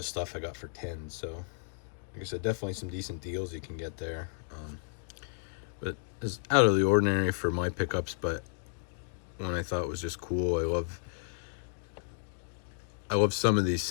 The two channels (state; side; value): silent; right; digital silence